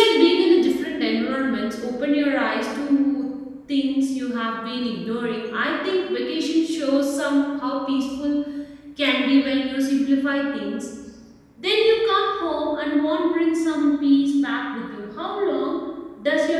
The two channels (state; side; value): identical; both; correlation 1.00